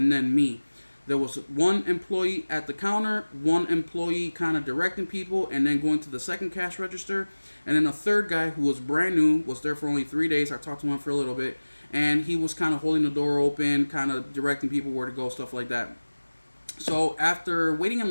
then me. There was one employee at the counter, one employee kind of directing people, and then going to the second cash register, and then a third guy who was brand new, was there for only 3 days. I talked to him for a little bit, and he was kind of holding the door open, kind of directing people where to go, stuff like that. So after waiting in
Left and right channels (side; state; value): both; inverted; correlation -1.00